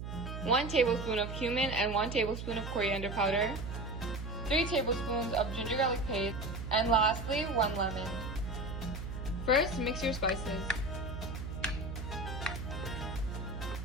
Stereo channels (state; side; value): noise; right; hum, 7 dB below the sound